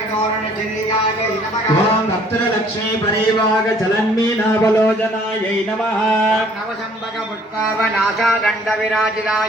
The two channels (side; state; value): both; normal; correlation 0.59